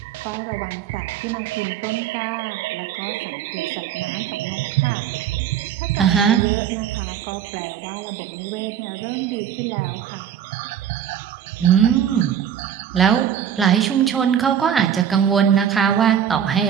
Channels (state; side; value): quieter; left; 9.0 dB